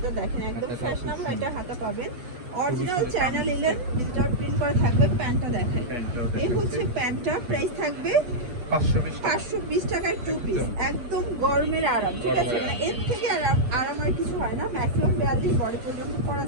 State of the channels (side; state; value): left; late; 8.4 ms